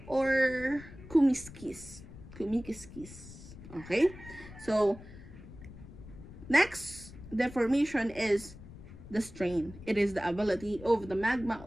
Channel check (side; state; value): left; noise; rumble, 16 dB below the sound